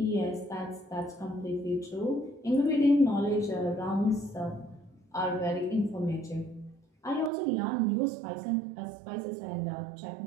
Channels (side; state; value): left; drops out; at 7.3 s